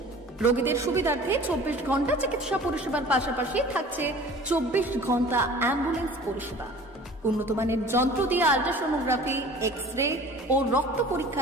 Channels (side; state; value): both; normal; correlation 0.45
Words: রোগীদের সুবিধার্থে 24 ঘন্টা চিকিৎসা পরিষেবার পাশাপাশি থাকছে 24 ঘন্টা অ্যাম্বুলেন্স পরিষেবা। উন্নত মানের যন্ত্র দিয়ে আল্ট্রাসোনোগ্রাফি, এক্স-রে ও রক্ত